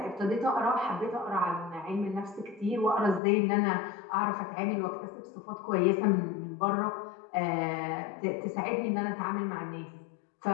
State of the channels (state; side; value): drops out; right; at 3.2 s